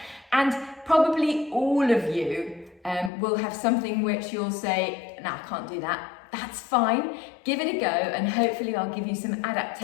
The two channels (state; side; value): drops out; right; at 3.1 s